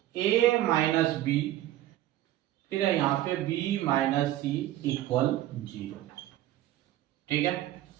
a माइनस बी, फिर है यहाँ पे b माइनस सी इक्वल 0। ठीक है,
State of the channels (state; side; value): quieter; left; 14.1 dB